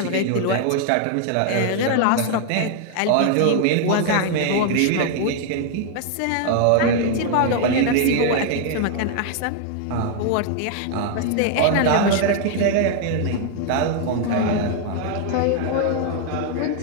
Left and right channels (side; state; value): both; different; correlation 0.00